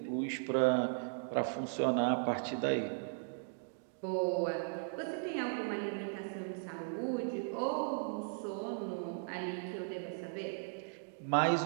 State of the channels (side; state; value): left; silent; digital silence